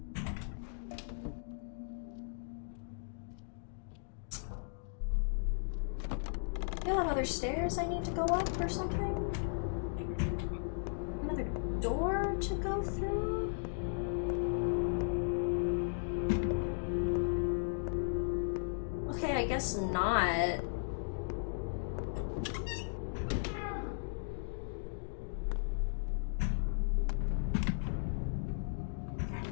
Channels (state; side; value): silent; right; digital silence